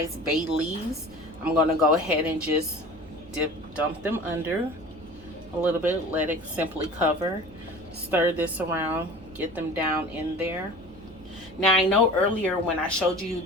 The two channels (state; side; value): noise; right; hum, 22 dB below the sound